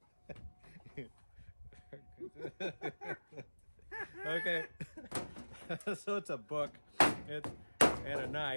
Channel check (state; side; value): inverted; both; correlation -1.00